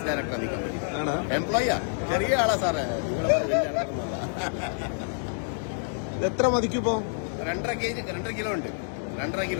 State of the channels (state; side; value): silent; right; digital silence